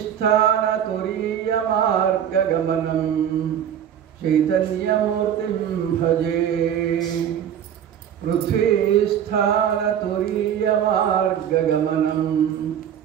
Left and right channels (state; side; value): quieter; left; 9.4 dB